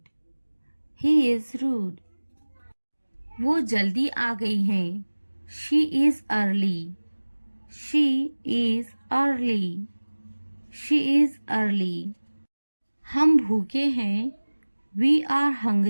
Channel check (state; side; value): inverted; both; correlation -1.00